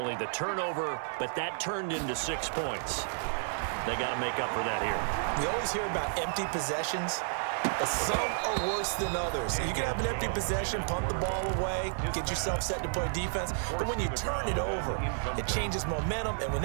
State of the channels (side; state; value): left; silent; digital silence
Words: the turnover, but that turned into 6 points. They got to make up for that here. We always hear about empty possessions. but some are worse than others. You can have an empty possession, punt the ball away, get yourself set to play defense, but when you turn it over, it changes momentum, and when